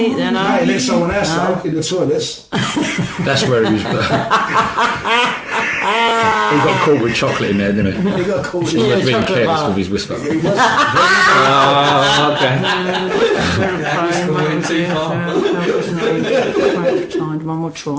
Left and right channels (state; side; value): identical; both; correlation 1.00